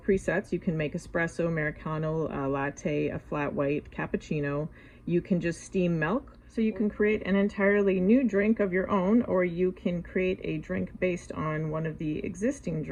You can make espresso, Americano, a latte, a flat white, cappuccino. You can just steam milk. So you can create an entirely new drink of your own, or you can create a drink based on one of the existing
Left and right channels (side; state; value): both; identical; correlation 1.00